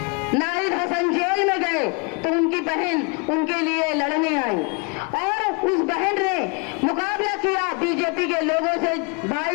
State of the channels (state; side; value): quieter; right; 32.9 dB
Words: नाहिद हसन जेल में गए तो उनकी बहन उनके लिए लड़ने आई और उस बहन ने मुकाबला किया बीजेपी के लोगों से,